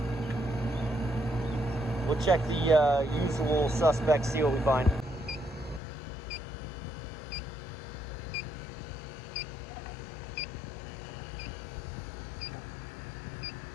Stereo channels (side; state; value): right; drops out; at 5.8 s